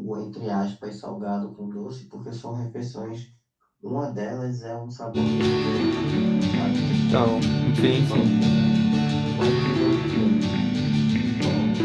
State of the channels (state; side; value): identical; both; correlation 1.00